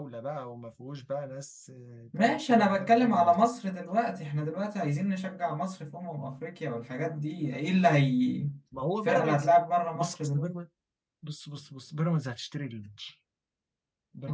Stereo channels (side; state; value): both; identical; correlation 1.00